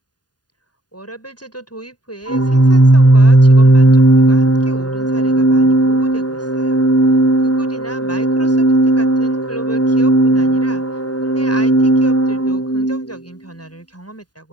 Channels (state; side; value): late; right; 0.70 ms